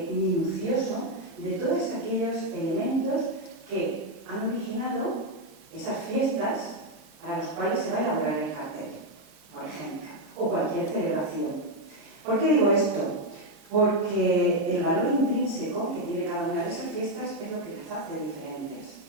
minucioso de todos aquellos elementos que han originado esas fiestas a las cuales se va a elaborar el cartel, por ejemplo, o cualquier celebración. ¿Por qué digo esto? Porque el valor intrínseco que tiene cada una de esas fiestas es lo que las hace diferentes.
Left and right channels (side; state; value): both; normal; correlation 0.03